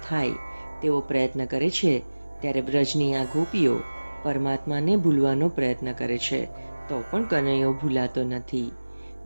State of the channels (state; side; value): inverted; both; correlation -1.00